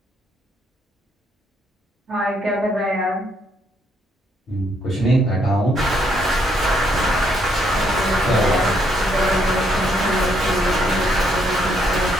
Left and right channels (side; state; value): both; normal; correlation 0.72